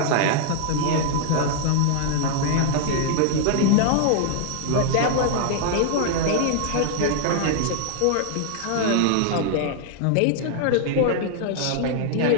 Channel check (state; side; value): different; both; correlation 0.00